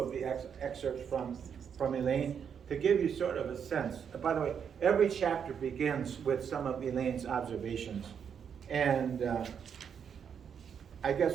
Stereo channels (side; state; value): left; quieter; 7.5 dB